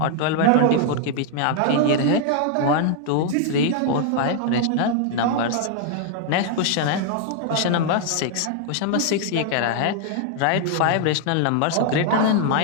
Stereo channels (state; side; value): different; both; correlation 0.00